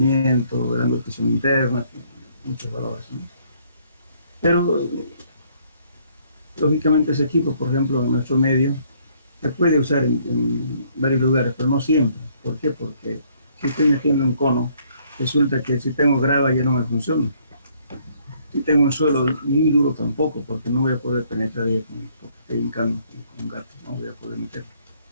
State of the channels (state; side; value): inverted; both; correlation -0.65